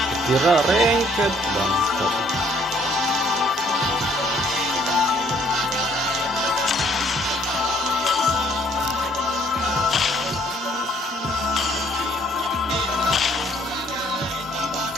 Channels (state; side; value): normal; both; correlation 0.62